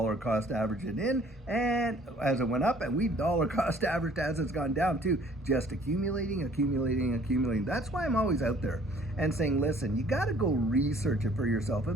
cost averaged it in, and as it went up, and we've dollar cost averaged as it's gone down too, just accumulating. That's why I'm always out there and saying, listen, you got to go research it for yourself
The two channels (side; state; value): both; normal; correlation 0.56